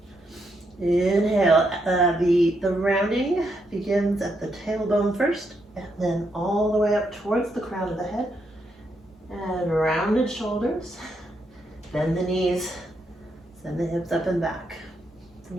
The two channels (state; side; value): normal; both; correlation 0.79